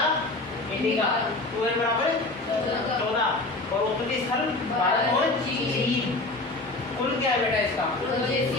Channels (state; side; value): quieter; right; 3.0 dB